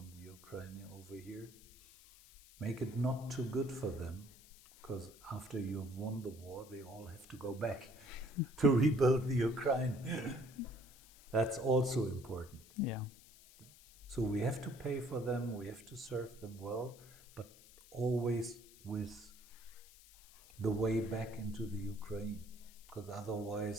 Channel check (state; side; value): noise; left; hiss, 22 dB below the sound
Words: the Ukraine over here. Make it not too good for them, because after you have won the war, they all have to go back to rebuild the Ukraine. That's also important. Yeah. So we have to pay for them, we have to serve them well, but always with the way back into the Ukraine, because